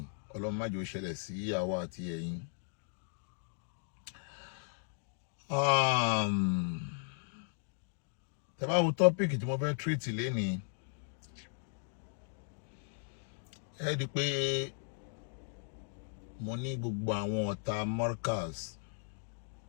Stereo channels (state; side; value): silent; right; digital silence